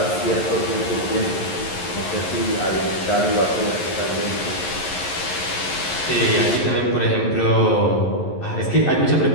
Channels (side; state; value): right; late; 11 ms